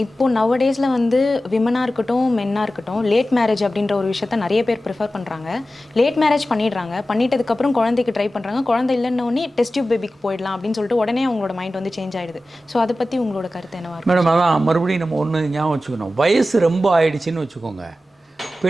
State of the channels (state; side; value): normal; both; correlation 0.94